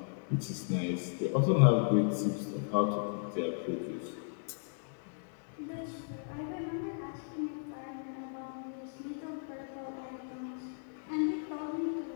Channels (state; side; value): silent; right; digital silence